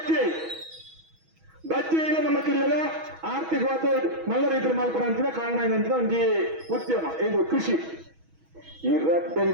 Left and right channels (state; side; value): late; left; 6.2 ms